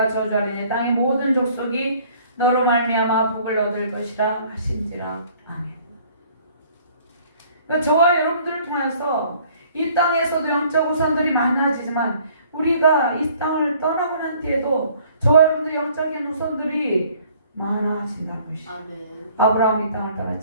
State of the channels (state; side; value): inverted; both; correlation -0.57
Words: 저주하리니 땅의 모든 족속이 너로 말미암아 복을 얻을 것이라 하신지라. 아멘. 그러니까 저와 여러분들을 통해서 이 땅에서도 영적 우선들이 많아지지만 우리가 이 땅을 떠나고 난 뒤에도 저와 여러분들의 영적인 우선들이 많아진다는 것이죠. 아브라함이 이 땅을